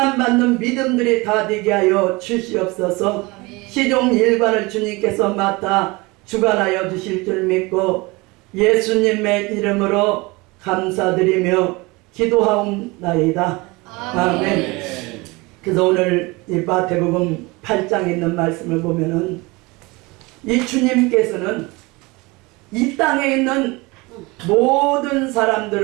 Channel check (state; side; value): quieter; left; 24.3 dB